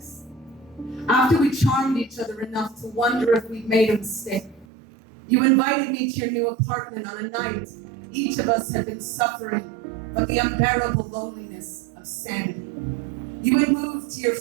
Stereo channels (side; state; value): left; drops out; at 4.7 s